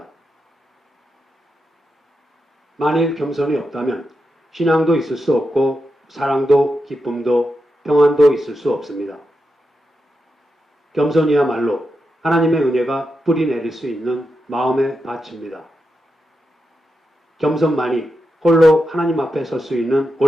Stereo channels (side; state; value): both; normal; correlation 0.87